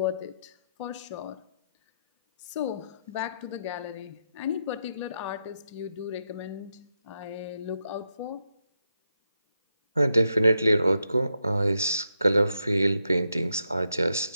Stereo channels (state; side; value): inverted; both; correlation -0.82